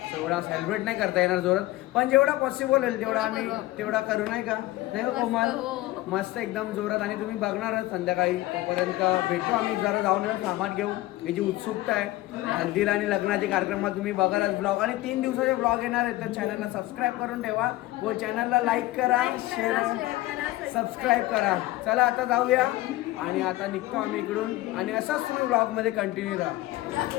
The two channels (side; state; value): right; quieter; 17.5 dB